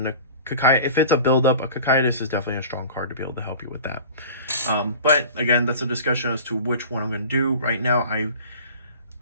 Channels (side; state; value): both; inverted; correlation -0.40